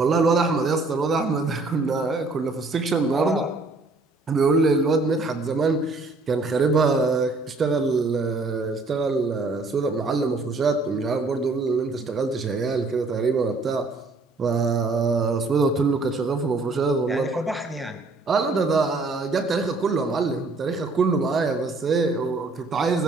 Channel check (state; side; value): quieter; left; 3.5 dB